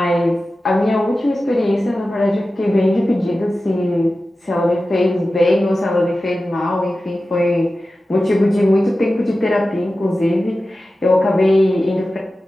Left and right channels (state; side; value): normal; both; correlation 0.94